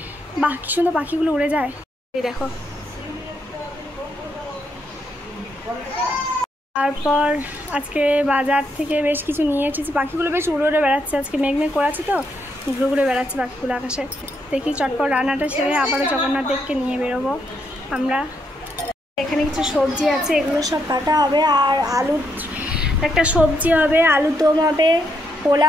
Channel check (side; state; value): both; normal; correlation 0.77